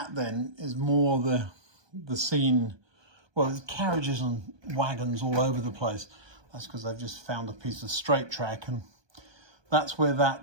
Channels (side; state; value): left; late; 1.2 ms